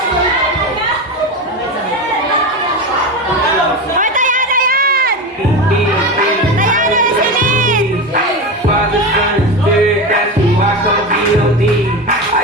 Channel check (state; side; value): normal; both; correlation 0.21